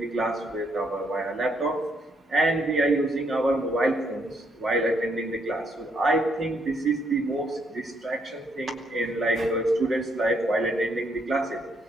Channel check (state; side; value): normal; both; correlation 0.73